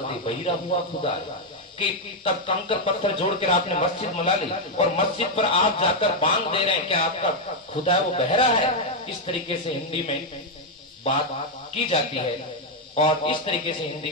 दे बहिरा हुआ खुदा, कि तब कंकर पत्थर जोड़कर आपने मस्जिद बना ली और मस्जिद पर आप जाकर बांध दे रहे हैं, क्या आपका खुदा है वो बहरा है। इस तरीके से हिंदी में बात की जाती है और इस तरीके से हिंदी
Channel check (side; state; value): both; normal; correlation 0.01